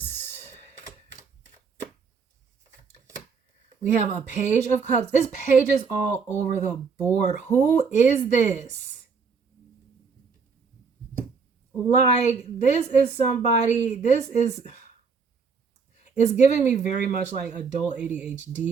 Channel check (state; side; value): quieter; left; 5.4 dB